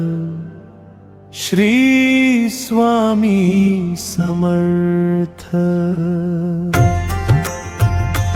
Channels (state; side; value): identical; both; correlation 1.00